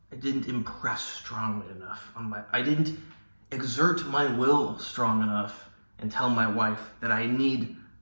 impress strongly enough I didn't exert my will strong enough and tell my wife that I need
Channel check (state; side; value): inverted; both; correlation -1.00